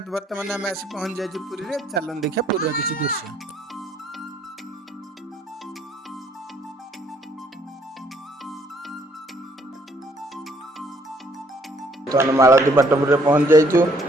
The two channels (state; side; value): normal; both; correlation 0.65